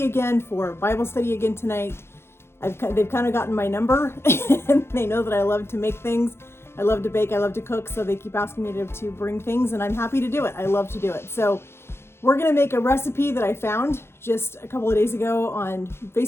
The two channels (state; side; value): late; right; 0.12 ms